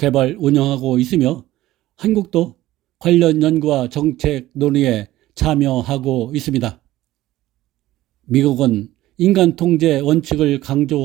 운영하고 있으며 한국도 관련 연구와 정책 논의에 참여하고 있습니다. 미국은 인간 통제 원칙을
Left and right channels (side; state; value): left; quieter; 15.7 dB